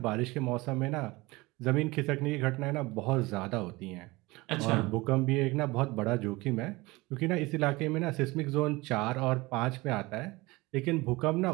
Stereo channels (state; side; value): quieter; left; 22.2 dB